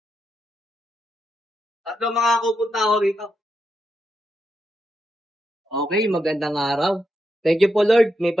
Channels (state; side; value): normal; both; correlation 0.84